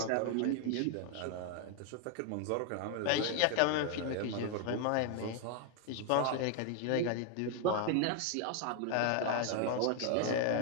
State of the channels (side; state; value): both; different; correlation 0.00